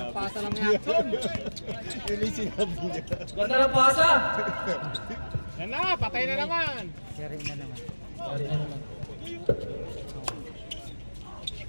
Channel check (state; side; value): inverted; both; correlation -1.00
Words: Pasa lang yan. Yun yung sinabi niya. Ganda ng pasa. Yan na, patay na naman. Sharing na naman.